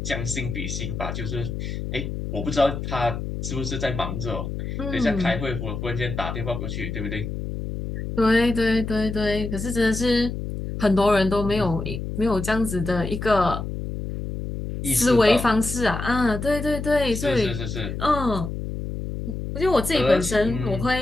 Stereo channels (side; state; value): left; noise; hum, 5 dB below the sound